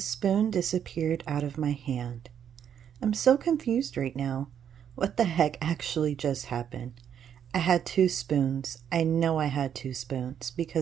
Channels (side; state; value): left; quieter; 8.8 dB